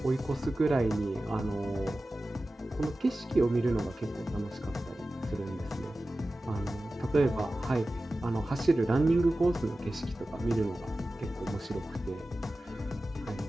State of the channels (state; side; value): normal; both; correlation 0.95